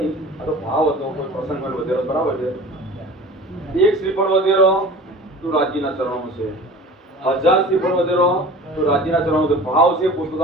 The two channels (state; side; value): normal; both; correlation 0.40